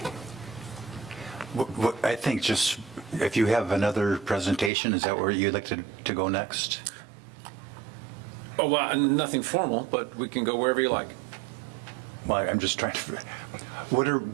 I think just, if you have another presentation, is that where you'd like to go next? Oh, well, nothing formal, but we can go wherever you like. Well, I'm just trying to, what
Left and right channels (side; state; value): left; drops out; at 4.7 s